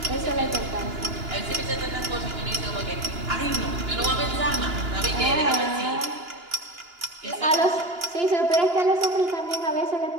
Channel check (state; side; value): late; left; 2.9 ms